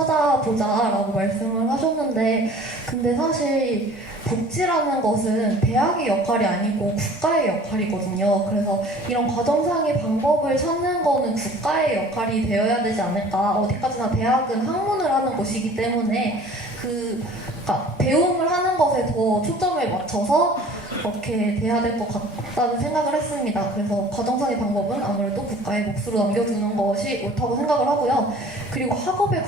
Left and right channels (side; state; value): both; normal; correlation 0.48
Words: 말씀을 하셨는데, 근데 사실 복지라는 것은 대학의 역할이 아니고 국가의 역할이거든요. 그래서 이런 과정상의 방법을 찾는 거는 국가의 역할이 되어야 되지 않을까. 어디까지나 대학은 학문을 하는 곳이기 때문에 그러니까 배움을 하는 것에 더 초점을 맞춰서 그렇게 돼야 될 것 같다는 생각을 했습니다. 그래서 과정상의 방법은 아무래도 국가의 몫으로 남겨두는 것이 옳다고 생각을 하고요. 그리고 학업에